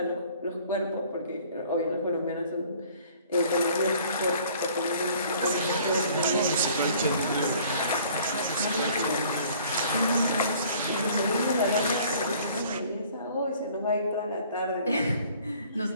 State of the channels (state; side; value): inverted; both; correlation -0.54